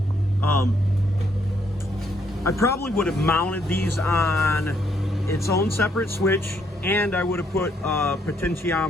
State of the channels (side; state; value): both; normal; correlation 0.71